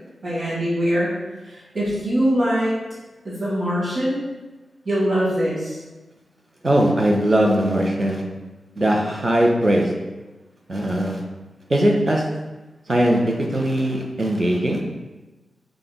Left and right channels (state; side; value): normal; both; correlation 0.91